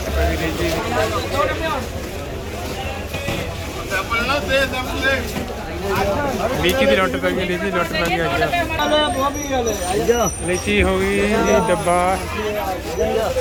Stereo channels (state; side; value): identical; both; correlation 1.00